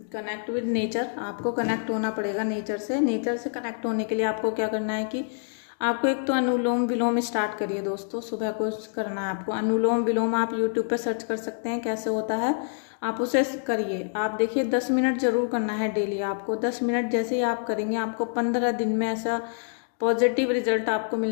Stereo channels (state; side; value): silent; right; digital silence